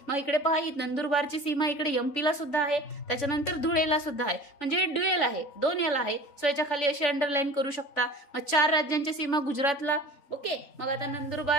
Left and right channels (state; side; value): late; right; 3.5 ms